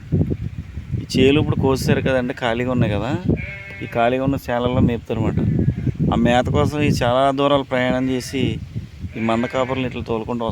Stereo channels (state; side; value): identical; both; correlation 1.00